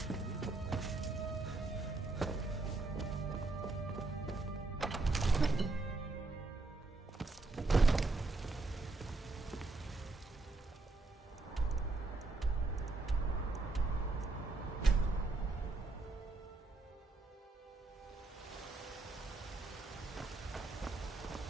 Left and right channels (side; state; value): left; quieter; 3.4 dB